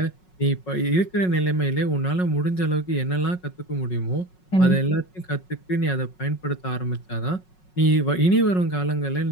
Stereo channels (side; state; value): right; late; 5.4 ms